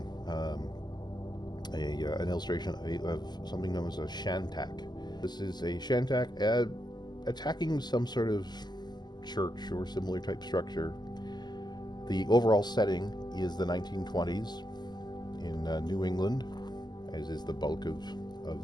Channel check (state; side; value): late; right; 0.21 ms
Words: an illustration of something known as a Shantak. This is a Shantak attacking some sort of church or similar type structure. The overall setting is the 1920s in New England, as is the bulk of